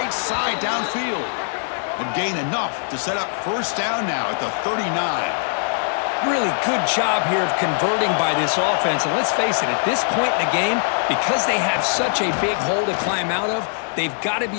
side downfield. And gain enough to set up first down now at the 39. Really good job here of converting by this offense. And let's face it, at this point in the game, because they have such a big hole to climb out of, they've got to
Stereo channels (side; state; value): right; silent; digital silence